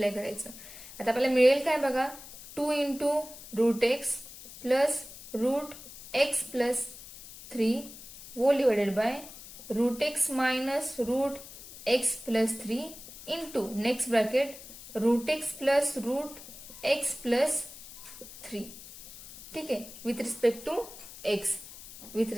करायचं. आता आपल्याला मिळेल काय बघा, 2 into √x plus √x plus 3 whole divided by √x minus √x plus 3 into next bracket √x plus √x plus 3. ठीक आहे, with respect to x, with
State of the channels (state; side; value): noise; left; hiss, 15 dB below the sound